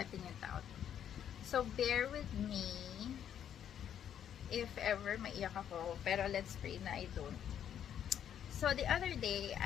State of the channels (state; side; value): quieter; right; 9.5 dB